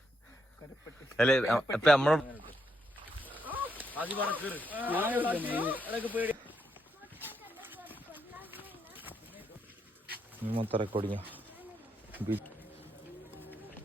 കരപ്പെട്ടി. അല്ലേ അപ്പൊ നമ്മള് മൊത്തം റെക്കോർഡിങ്.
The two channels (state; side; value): normal; both; correlation 0.79